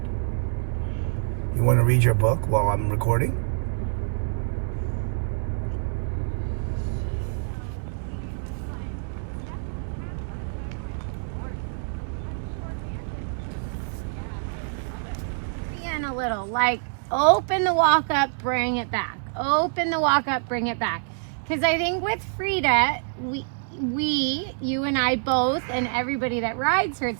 You want to read your book while I'm recording? A little, like open the walk up, bring it back. Open the walk up, bring it back. Because I think with Frida, you and I both, and everybody that rides her,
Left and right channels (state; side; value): silent; left; digital silence